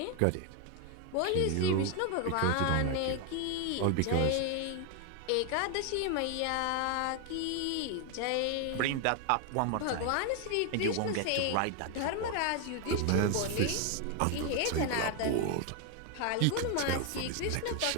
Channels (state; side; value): different; both; correlation 0.01